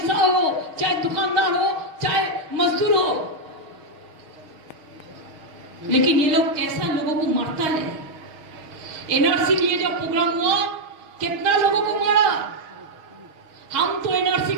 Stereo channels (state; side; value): late; left; 6.3 ms